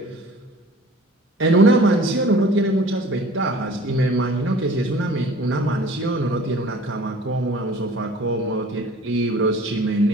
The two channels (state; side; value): normal; both; correlation 0.48